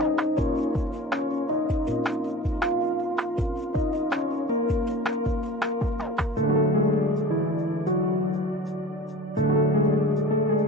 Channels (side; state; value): both; normal; correlation 0.38